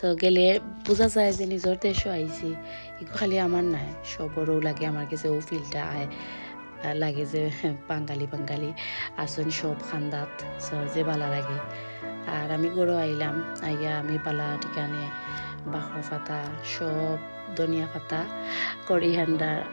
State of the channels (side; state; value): both; inverted; correlation -1.00